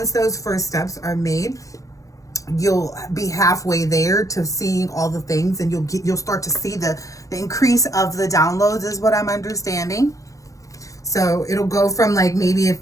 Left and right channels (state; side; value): late; right; 0.16 ms